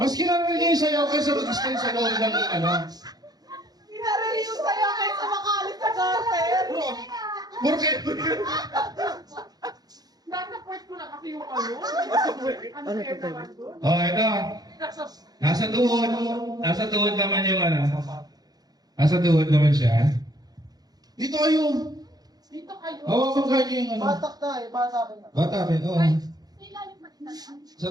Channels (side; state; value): left; late; 0.19 ms